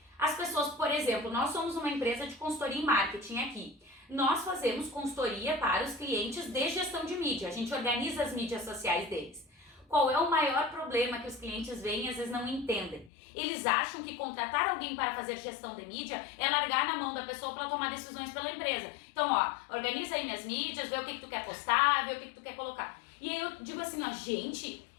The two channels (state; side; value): drops out; right; at 13.1 s